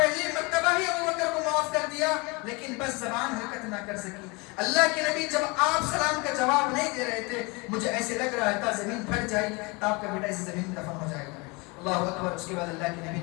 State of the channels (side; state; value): right; quieter; 27.6 dB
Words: مرتبہ ہی ابوبکر کو معاف کر دیا لیکن بس زبان حرکت نہ کر سکی. اللہ کے نبی جب آپ سلام کا جواب نہیں دے رہے تھے مجھے ایسے لگ رہا تھا زمین پھٹ جائے گی, آپ کا بیٹا اسی زمین میں دفن ہو جائے گا. اللہ اکبر. اس کے بعد اللہ کے نبی